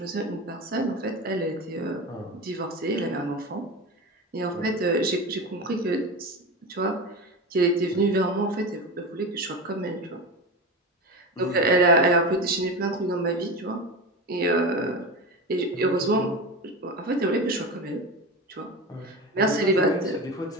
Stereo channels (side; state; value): both; normal; correlation 0.25